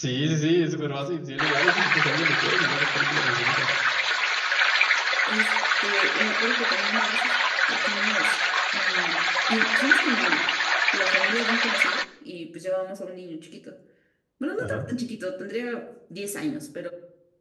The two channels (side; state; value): both; identical; correlation 1.00